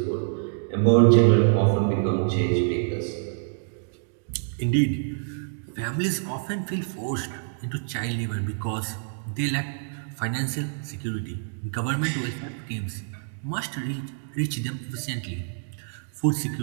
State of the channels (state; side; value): silent; left; digital silence